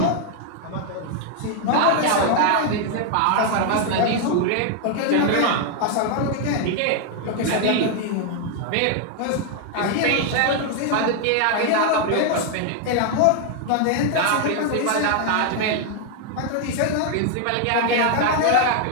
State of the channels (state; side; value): different; both; correlation 0.00